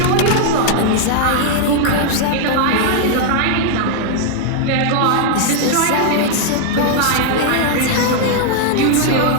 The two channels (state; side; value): different; both; correlation 0.00